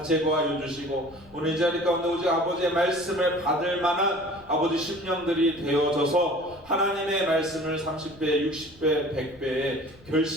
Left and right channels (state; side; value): noise; left; rumble, 25 dB below the sound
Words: 주시고 오늘 이 자리 가운데 오직 아버지의 말씀을 받을 만한 아버지 심령들이 되어져서 하나님의 말씀을 30배, 60배, 100배의